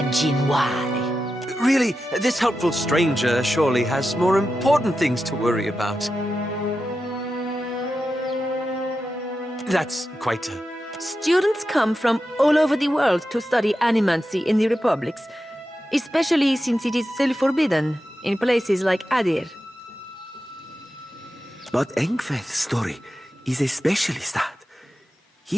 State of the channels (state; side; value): normal; both; correlation 0.90